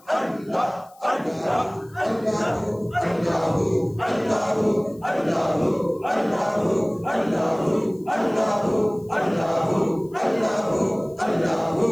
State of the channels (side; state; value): left; noise; hiss, 29 dB below the sound